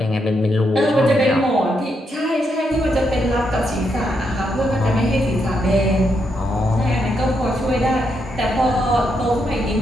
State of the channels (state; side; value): normal; both; correlation 0.80